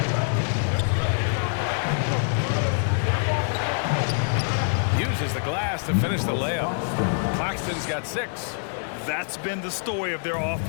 Uses the glass to finish the layup. Claxton's got 6. That's been the story of their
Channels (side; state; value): right; silent; 62 dB below the other